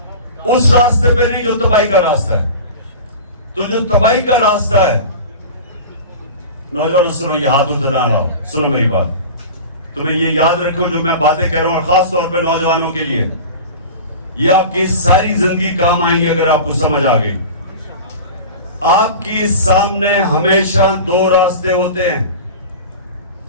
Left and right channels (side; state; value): both; inverted; correlation -0.34